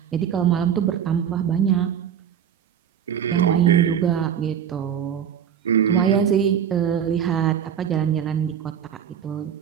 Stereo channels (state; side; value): quieter; left; 8.6 dB